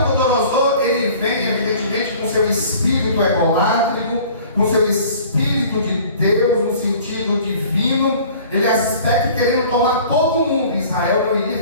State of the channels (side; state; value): both; inverted; correlation -0.48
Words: ele vem evidentemente com seu espírito egolátrico, com seu espírito de Deus, no sentido divino. Ele aspecta querendo tomar todo mundo. Israel não iria